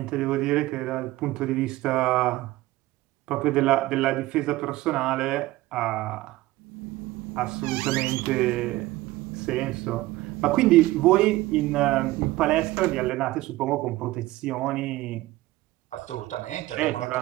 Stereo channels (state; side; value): quieter; left; 17.9 dB